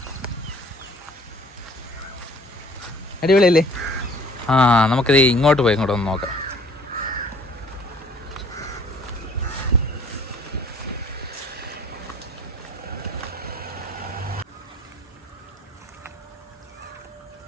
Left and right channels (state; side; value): normal; both; correlation 0.54